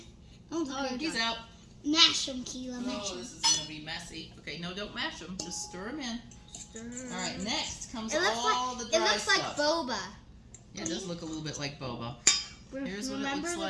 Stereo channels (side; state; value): both; identical; correlation 1.00